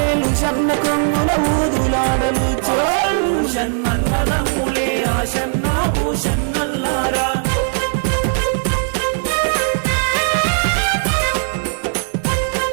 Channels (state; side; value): silent; left; 67 dB below the other